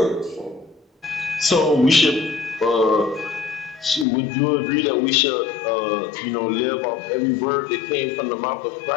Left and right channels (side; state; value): right; drops out; at 4.0 s